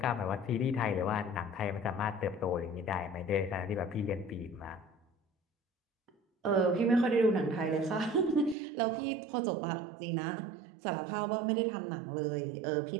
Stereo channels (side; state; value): left; drops out; at 8.6 s